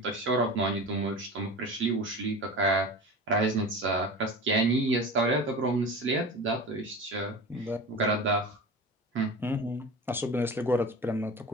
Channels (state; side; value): normal; both; correlation 0.32